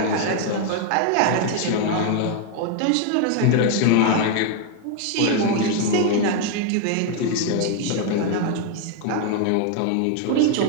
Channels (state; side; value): different; both; correlation 0.00